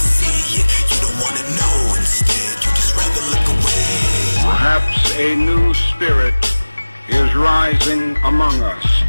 see it. You don't want to know. Instead, you just rather look away. Perhaps a new spirit is rising among us.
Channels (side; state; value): both; inverted; correlation -1.00